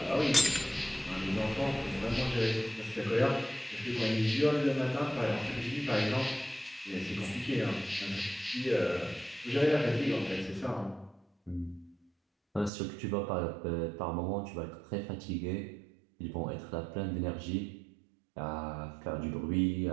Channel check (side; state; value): left; drops out; at 12.7 s